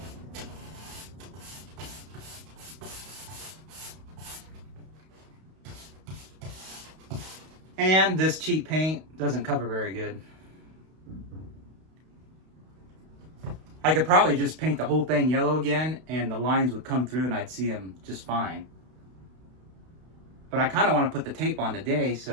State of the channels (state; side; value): late; left; 32 ms